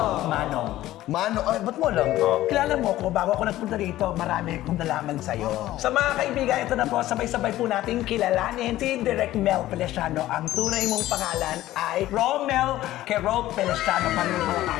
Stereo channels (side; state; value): right; quieter; 15.0 dB